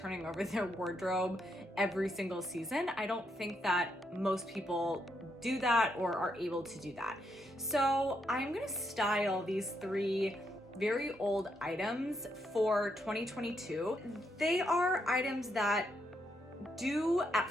over their wardrobe every single season. I don't think that most people do that or are able to do that. So I'm gonna style these 3 very old items for 2022. They are items that do at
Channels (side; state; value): both; normal; correlation 0.78